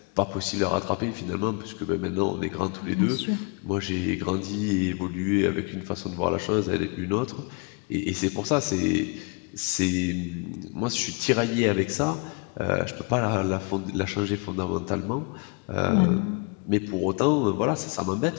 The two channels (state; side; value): quieter; right; 32.7 dB